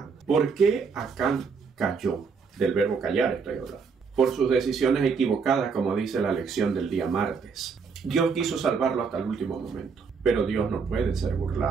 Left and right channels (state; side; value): quieter; left; 5.4 dB